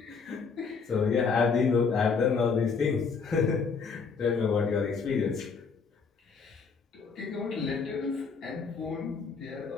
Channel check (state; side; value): quieter; right; 5.2 dB